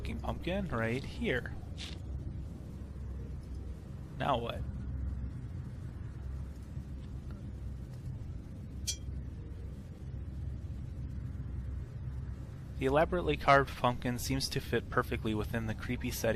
pumpkin right here. Now what? The elaborately carved pumpkin seems to fit perfectly within the creepy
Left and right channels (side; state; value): both; identical; correlation 1.00